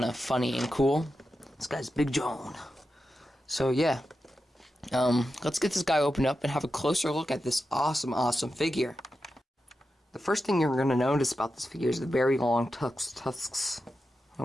of funny and cool. This guy's Big John. So yeah, let's get this guy opened up and have a closer look at this awesome figure. The first thing you're going to notice about this figure is the very long tusks. It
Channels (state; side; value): normal; both; correlation 0.90